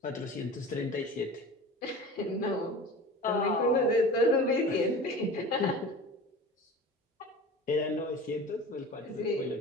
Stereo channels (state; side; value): normal; both; correlation 0.36